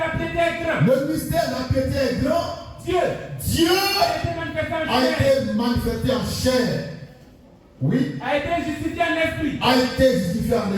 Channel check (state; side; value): identical; both; correlation 1.00